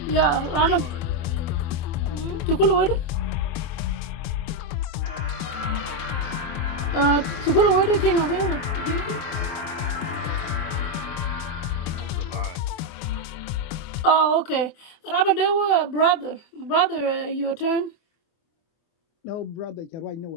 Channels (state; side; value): late; right; 24 ms